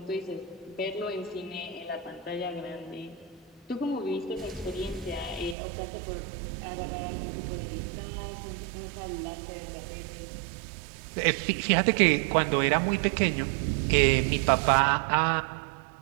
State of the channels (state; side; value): drops out; left; at 5.6 s